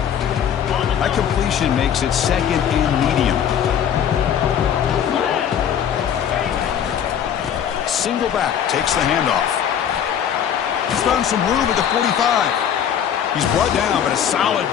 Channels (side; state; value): right; quieter; 9.0 dB